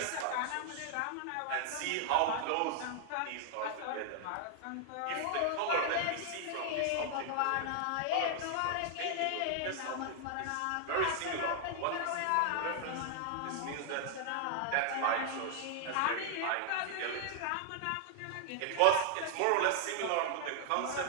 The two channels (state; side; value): different; both; correlation 0.00